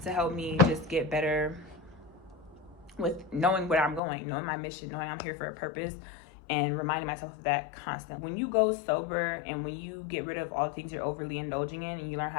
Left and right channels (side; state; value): right; drops out; at 4.0 s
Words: help me just get better with knowing where I'm going, knowing my mission, knowing I'm here for a purpose, and reminding myself of that constant. When you go sober and when you get rid of all the things you're overly indulging in and you learn how